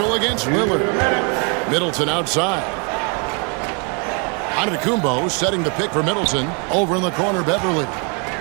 against Lillard. Middleton outside. Antetokounmpo setting the pick for Middleton. Over in the corner, Beverly.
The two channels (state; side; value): quieter; left; 35.5 dB